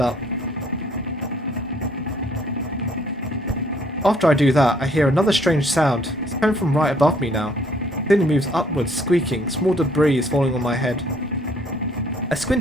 up. After I do that, I hear another strange sound. It's coming from right above me now. It then moves upwards, squeaking. Small debris is falling on my head. I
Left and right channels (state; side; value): normal; both; correlation 0.62